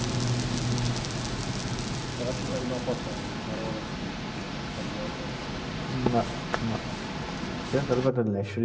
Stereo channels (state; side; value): identical; both; correlation 1.00